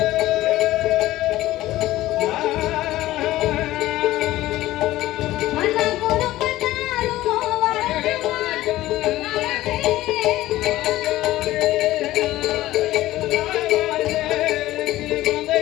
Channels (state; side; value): quieter; right; 15.8 dB